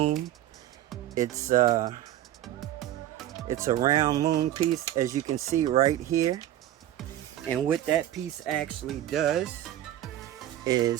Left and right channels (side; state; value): left; quieter; 12.8 dB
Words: It's a round moon piece, as you can see right here. And what that piece actually does